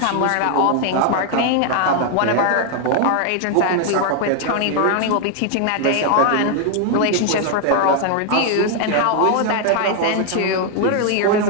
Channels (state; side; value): different; both; correlation 0.00